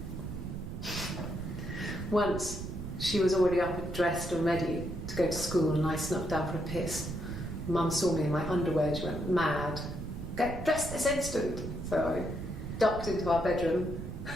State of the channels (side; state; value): right; noise; rumble, 7 dB below the sound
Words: Once, she was already up and dressed and ready to go to school, and I snuck down for a piss. Mum saw me in my underwear and she went mad. Get dressed this instant! So I ducked into our bedroom